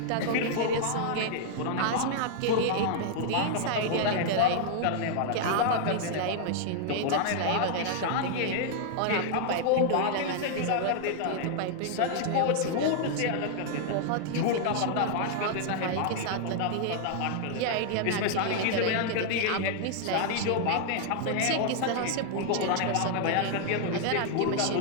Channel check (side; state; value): both; different; correlation 0.00